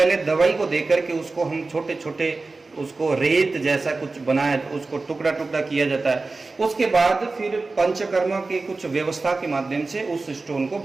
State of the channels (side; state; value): left; quieter; 3.6 dB